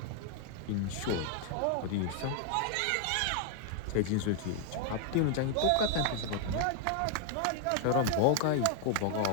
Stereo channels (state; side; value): different; both; correlation 0.00